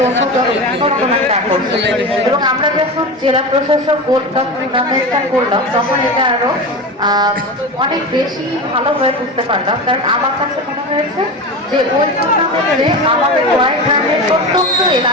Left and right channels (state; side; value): normal; both; correlation 0.25